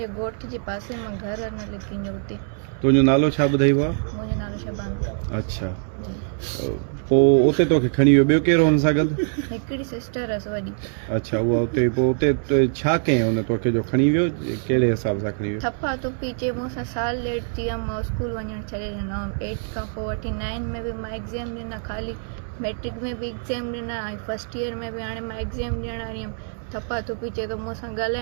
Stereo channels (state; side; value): silent; left; 63 dB below the other